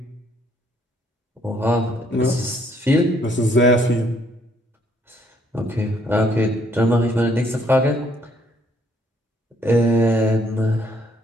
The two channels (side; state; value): both; normal; correlation 0.68